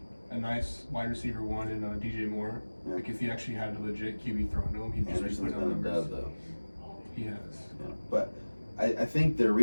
A nice wide receiver one in DJ Moore. Yeah. Like if he actually had a legit QB thrown to him, he'd just put down numbers. Though. He has. Yeah. But I think their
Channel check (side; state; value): both; inverted; correlation -1.00